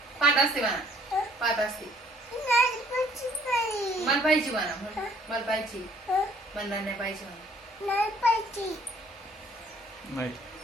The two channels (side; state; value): both; normal; correlation 0.60